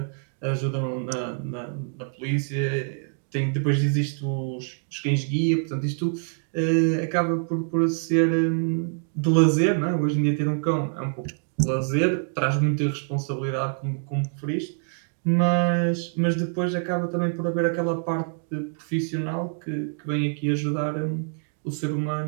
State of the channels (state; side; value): silent; left; 61 dB below the other